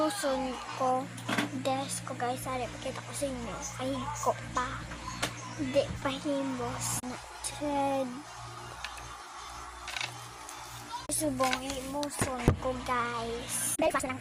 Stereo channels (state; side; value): identical; both; correlation 1.00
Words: ko desk ko guys, sari pakita ko sa inyo, ay ko pa hindi pa himbos na thread subong imuson ko guys, dahil fast lang